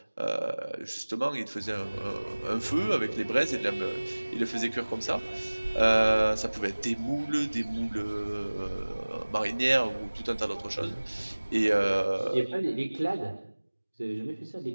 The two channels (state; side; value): inverted; both; correlation -1.00